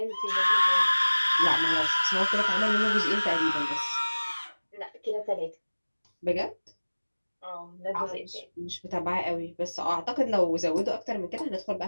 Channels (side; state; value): both; inverted; correlation -1.00